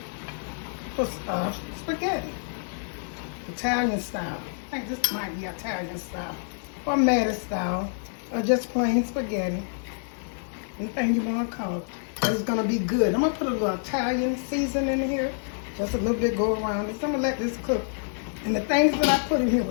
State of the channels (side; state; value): right; silent; digital silence